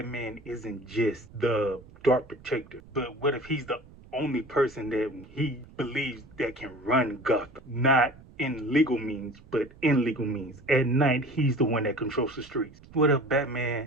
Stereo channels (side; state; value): right; noise; rumble, 22 dB below the sound